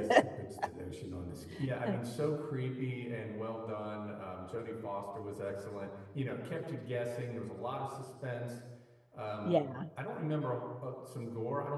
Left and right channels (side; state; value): both; identical; correlation 1.00